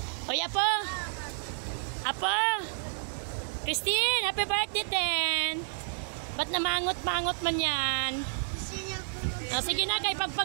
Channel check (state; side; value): silent; left; digital silence